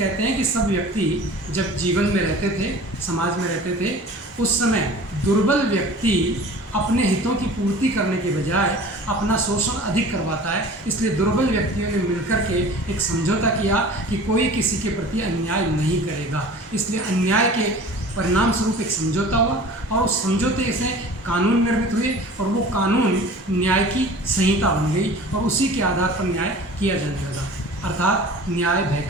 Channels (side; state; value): both; normal; correlation 0.42